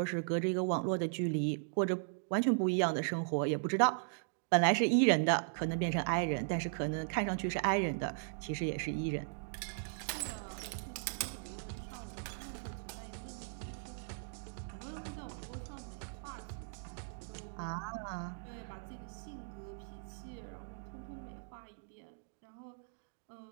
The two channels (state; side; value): silent; left; digital silence